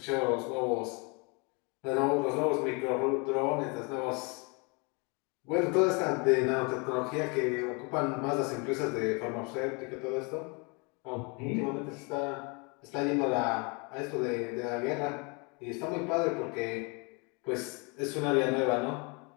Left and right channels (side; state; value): right; quieter; 31.6 dB